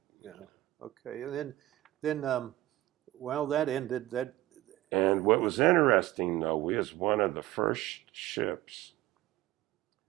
Yeah. Okay. And then, well, that ended. That. And what was interesting, though, we was one of the first ships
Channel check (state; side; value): quieter; left; 16.2 dB